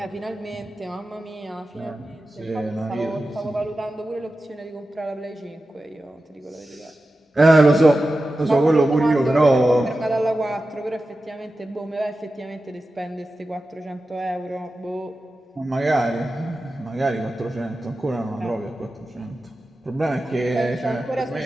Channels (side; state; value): both; normal; correlation 0.93